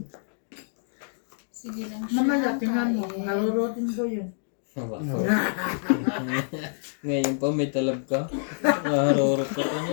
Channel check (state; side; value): silent; right; digital silence